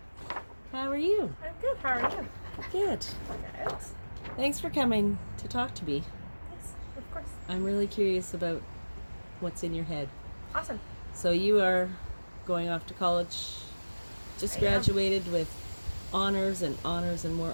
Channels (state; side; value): inverted; both; correlation -1.00